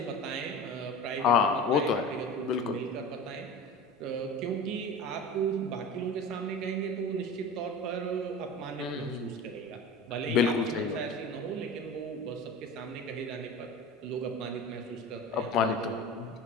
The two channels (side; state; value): both; normal; correlation 0.34